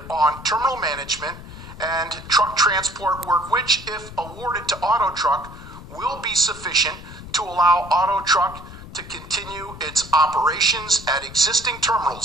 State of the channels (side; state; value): left; noise; rumble, 15 dB below the sound